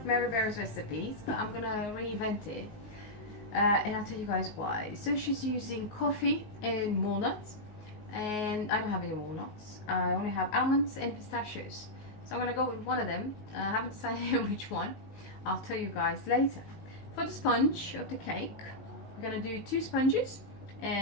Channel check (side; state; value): right; late; 19 ms